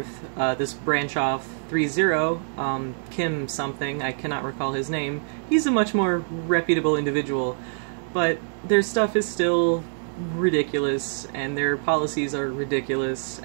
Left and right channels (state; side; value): silent; left; digital silence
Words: of this branch off, ThreeZero, Kim something, I cannot recall his name, he's a much more reputable individual. But their stuff is still ridiculous, and their policies are ridiculous,